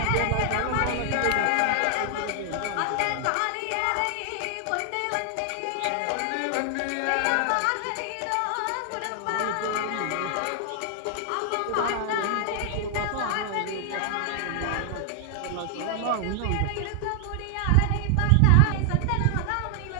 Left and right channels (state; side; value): different; both; correlation 0.00